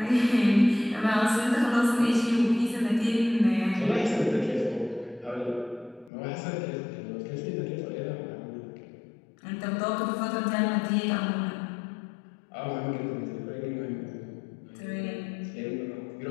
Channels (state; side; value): drops out; right; at 6.1 s